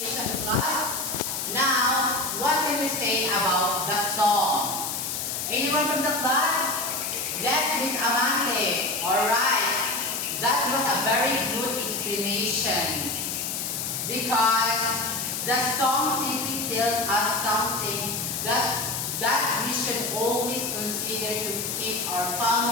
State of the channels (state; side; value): noise; left; hiss, 3 dB below the sound